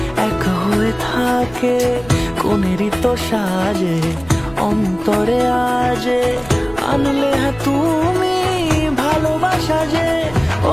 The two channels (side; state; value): right; noise; rumble, 19 dB below the sound